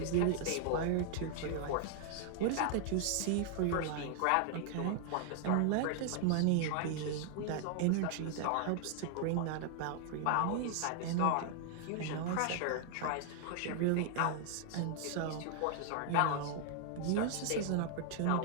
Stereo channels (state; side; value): different; both; correlation 0.00